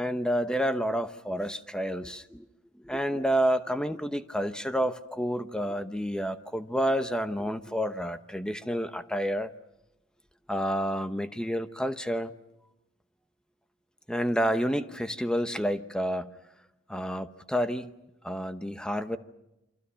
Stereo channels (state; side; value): normal; both; correlation 0.84